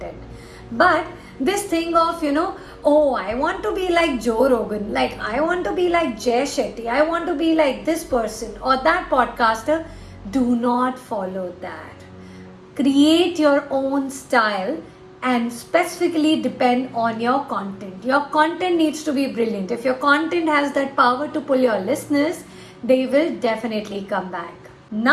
But this thing of, I want to be like Joe Rogan, like I want to be like Jay Shetty, I want to be like this person or that podcaster, do not follow that. Create your own style and specifically depend on your content. Your content needs to be brilliant. If your content has that power to pull your listeners, they will definitely come back.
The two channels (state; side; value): identical; both; correlation 1.00